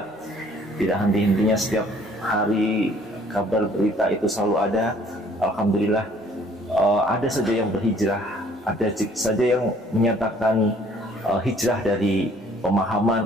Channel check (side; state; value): both; normal; correlation 0.58